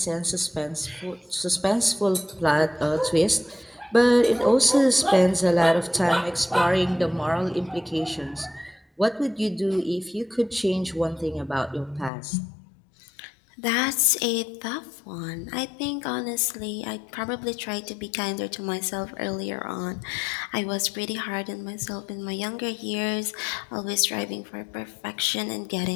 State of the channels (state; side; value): drops out; right; at 12.1 s